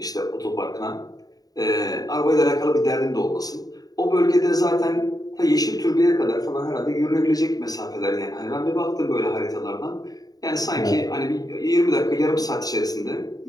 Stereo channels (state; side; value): late; right; 0.18 ms